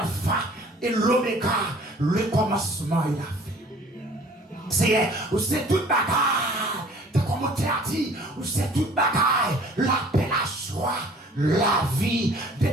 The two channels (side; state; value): both; normal; correlation 0.51